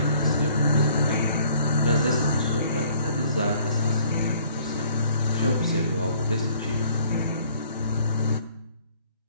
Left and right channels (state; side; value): inverted; both; correlation -0.58